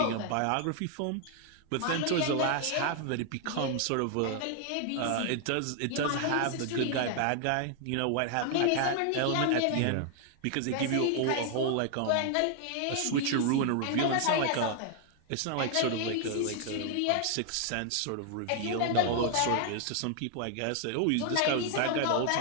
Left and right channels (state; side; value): different; both; correlation 0.00